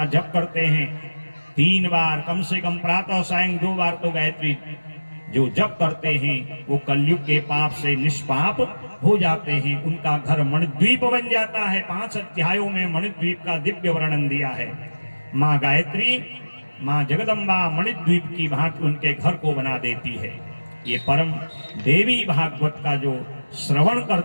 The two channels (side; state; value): both; inverted; correlation -1.00